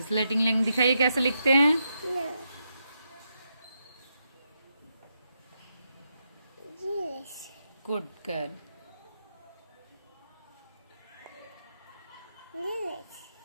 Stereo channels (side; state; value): both; inverted; correlation -0.84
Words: स्लेटिंग लैंड दिखाइए कैसे लिखते हैं। Good girl.